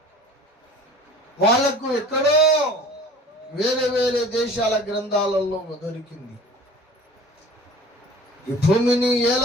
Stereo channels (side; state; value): both; normal; correlation 0.44